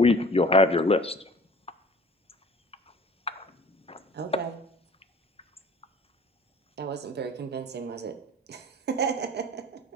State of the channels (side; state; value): both; normal; correlation 0.47